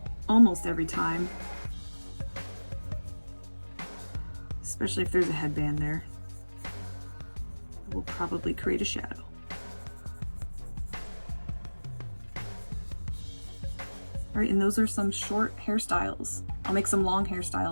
almost every time, especially if there's a headband there. It will probably create a shadow. All right, and those are some short hairstyles. I'll make some long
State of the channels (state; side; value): inverted; both; correlation -1.00